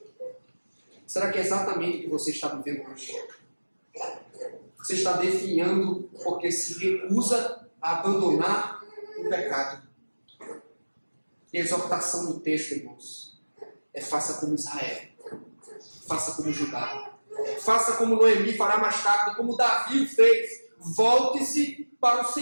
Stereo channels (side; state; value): both; inverted; correlation -1.00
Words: Será que é exatamente o que você está vivendo hoje? Você está definhando porque se recusa a abandonar o pecado. E a exortação do texto, irmãos, é faça como Israel, faça como Judá, faça como Noemi fará mais tarde, como Davi o fez. Volte-se para o